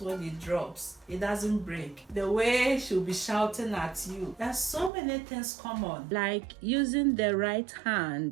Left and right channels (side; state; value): left; drops out; at 4.9 s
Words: it drops, it doesn't break. The way she'll be shouting at you. There's so many things common, like using the right